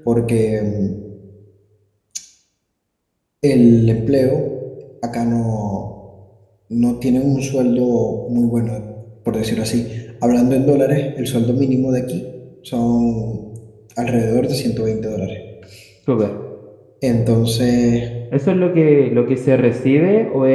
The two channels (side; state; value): both; identical; correlation 1.00